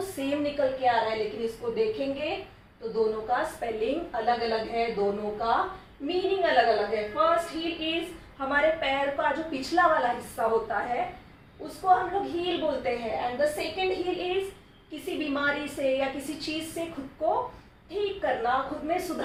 सेम निकल के आ रहा है, लेकिन इसको देखेंगे तो दोनों का स्पेलिंग अलग अलग है, दोनों का मीनिंग अलग अलग है। फर्स्ट हील इज हमारे पैर का जो पिछला वाला हिस्सा होता है उसको हम लोग हील बोलते हैं, and the second heal is किसी बीमारी से या किसी चीज से खुद को ठीक करना, खुद में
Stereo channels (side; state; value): both; identical; correlation 1.00